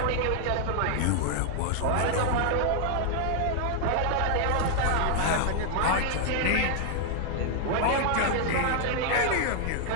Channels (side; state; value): both; different; correlation 0.00